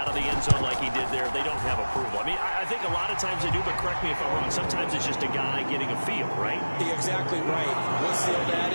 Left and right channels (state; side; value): inverted; both; correlation -1.00